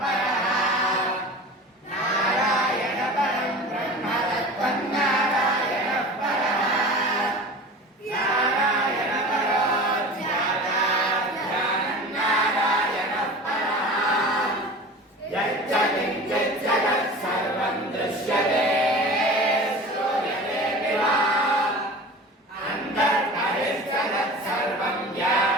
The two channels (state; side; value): normal; both; correlation 0.36